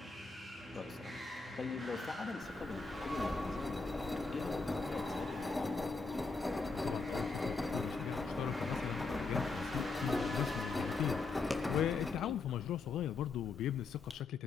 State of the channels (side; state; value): right; quieter; 4.1 dB